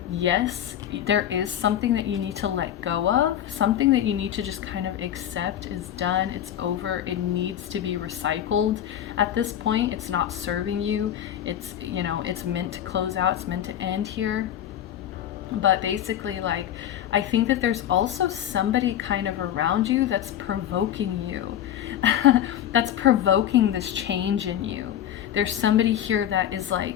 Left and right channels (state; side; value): quieter; right; 10.9 dB